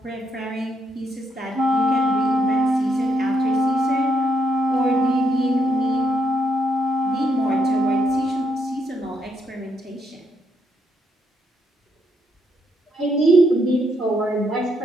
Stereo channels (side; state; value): both; normal; correlation 0.76